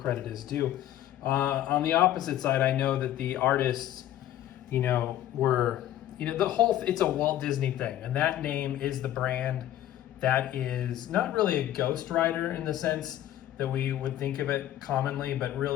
is due. On the opposite side, I know that the artists, were, it's a Walt Disney thing, and that name is the brand. That is not really a ghostwriter in the sense that we would think of it commonly, but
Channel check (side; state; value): right; quieter; 12.7 dB